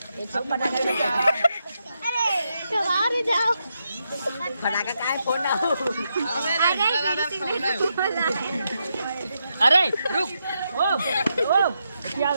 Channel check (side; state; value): both; inverted; correlation -0.83